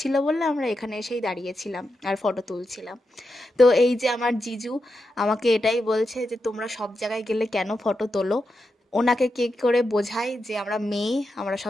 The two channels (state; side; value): normal; both; correlation 0.87